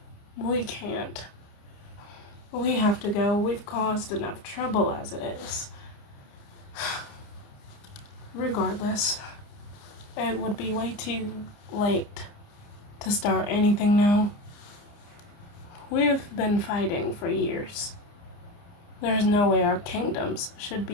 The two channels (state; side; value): late; right; 29 ms